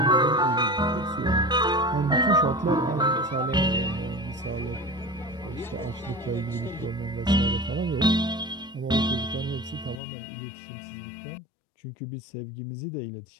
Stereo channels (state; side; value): drops out; right; at 10.0 s